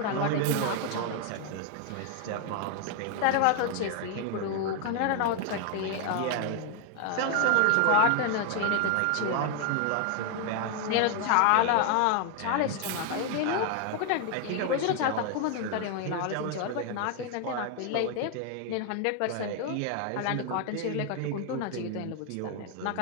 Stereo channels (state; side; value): different; both; correlation 0.00